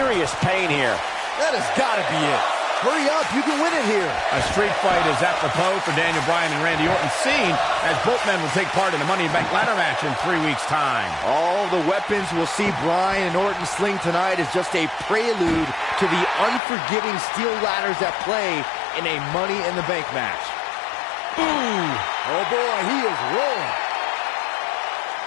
pain here. That has got to be it. Hurry up, you can win it here. A street fight is apropos for Daniel Bryan and Randy Orton, seen as both men will take part in the Money in the Bank ladder match in 3 weeks' time. All the weapons we'll see Bryan and Orton sling tonight is just a prelude to the unforgiving steel ladders at play in a Money in the Bank match. Ooh! Oh boy, he is rolling.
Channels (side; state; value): right; drops out; at 16.6 s